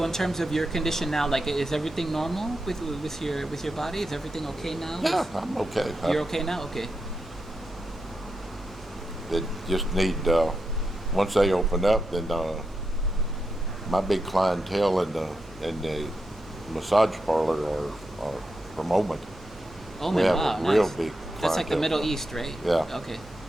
in terms of your condition now, like, is everything normal with your body? Is everything okay now? Yeah, I'm okay. You're okay now? Okay. They just need once they open up, then my big clientele in the massage parlor are for moment. Oh We my have wow, a real nice. big That's like the clientele. Middle East, right? Yeah. Okay.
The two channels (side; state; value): right; noise; hum, 22 dB below the sound